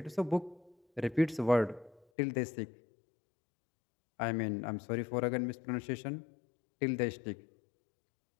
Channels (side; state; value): right; drops out; at 2.1 s